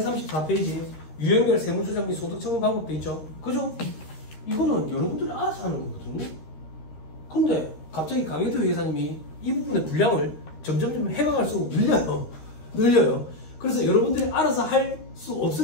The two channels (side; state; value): right; late; 13 ms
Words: 유형별 세무조정 및 소득처분 방법도 있죠? 그죠? 이거는 여러분들이 알아서 하는 거거든요. 근데 갑자기 강혜태 회계사님이 이 부분의 분량을 점점 해가갈수록 늘려요. 그래서 여러분들이 알아서 할 수